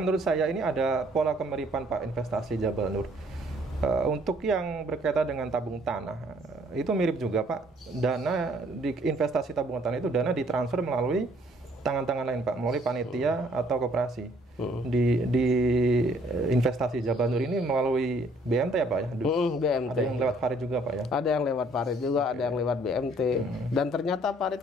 saya ini ada pola kemiripan Pak investasi Jabal Nur. Untuk yang berkaitan dengan tabung tanah, itu mirip juga Pak. Dana di investasi tabungan tanah itu dana ditransfer melalui tangan-tangan lain Pak, melalui panitia atau koperasi. Di investasi Jabal Nur ini melalui BMT ya Pak ya? BMT. Ada yang lewat Farid juga Pak ya? Ada yang lewat Farid juga, ada yang lewat BMT. Dan ternyata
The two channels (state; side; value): normal; both; correlation 0.62